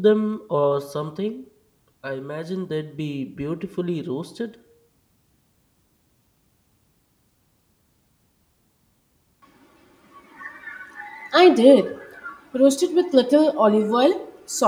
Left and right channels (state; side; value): identical; both; correlation 1.00